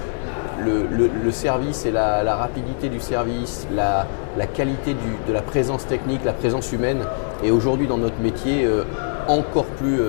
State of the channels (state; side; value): silent; right; digital silence